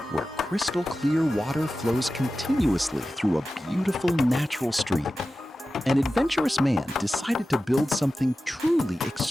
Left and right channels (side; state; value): both; normal; correlation 0.94